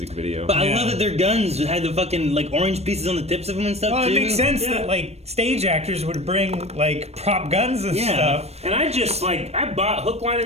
video. But I love that their guns had the fucking like orange pieces on the tips of them and stuff. Well, too. it makes sense that like stage actors would bring like prop guns and stuff. And I just I bought hook, line,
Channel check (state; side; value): late; left; 0.31 ms